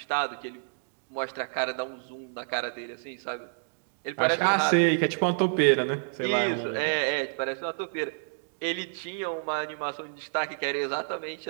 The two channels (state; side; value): silent; left; digital silence